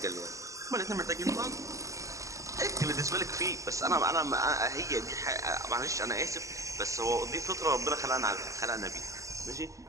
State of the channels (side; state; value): left; late; 0.16 ms